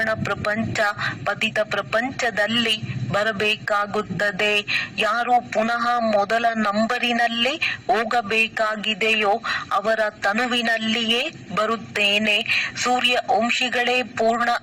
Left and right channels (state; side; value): identical; both; correlation 1.00